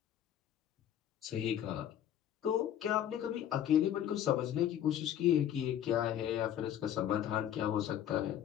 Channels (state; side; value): quieter; right; 10.6 dB